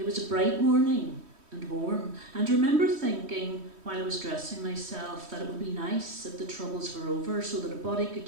was a bright morning and warm, and remember thinking while I was dressing myself that it would be nice if the troubles were over so that a body could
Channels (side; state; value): left; late; 3.1 ms